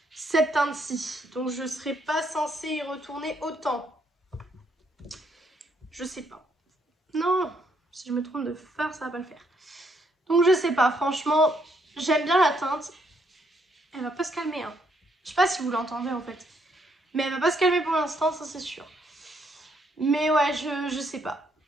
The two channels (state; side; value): normal; both; correlation 0.72